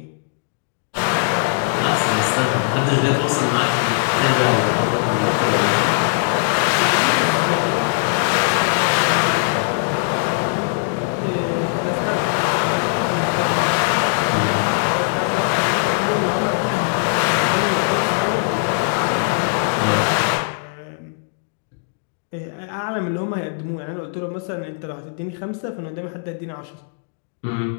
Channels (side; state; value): right; silent; digital silence